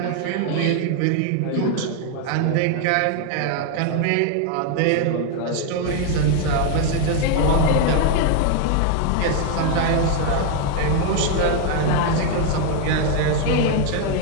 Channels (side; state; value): both; different; correlation 0.00